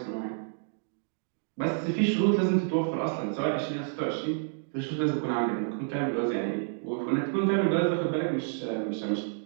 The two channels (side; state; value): left; silent; digital silence